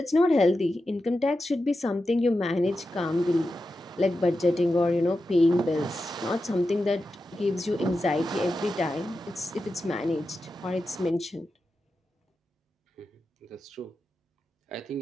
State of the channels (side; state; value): both; normal; correlation 0.90